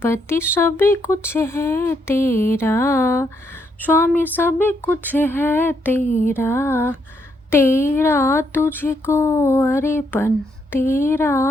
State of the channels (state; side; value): normal; both; correlation 0.76